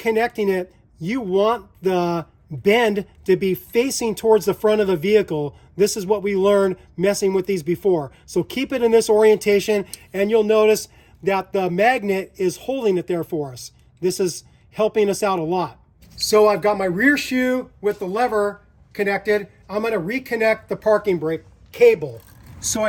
it, you want the bend to be facing towards the front of the vehicle. This is what we learned messing with these before. So keep it in this orientation, and you'll notice that the magnet is holding it there for us. This is helping us out a lot. So I've got my rear shoe with the lever connected. I'm going to reconnect the parking brake cable. So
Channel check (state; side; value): identical; both; correlation 1.00